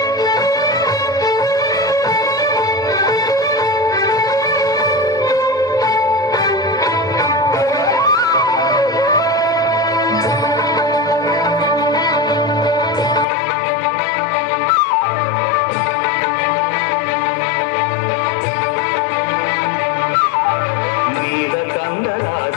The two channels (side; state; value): right; drops out; at 13.2 s